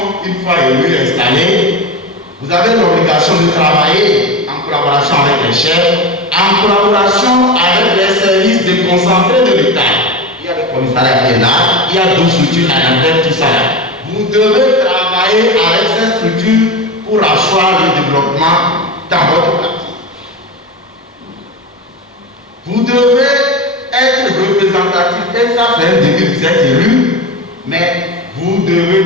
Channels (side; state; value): both; normal; correlation 0.23